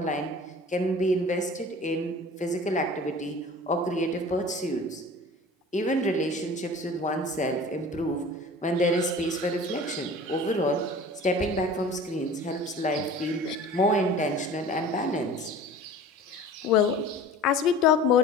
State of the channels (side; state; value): both; normal; correlation 0.42